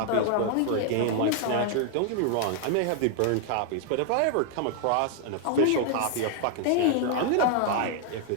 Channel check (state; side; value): different; both; correlation 0.00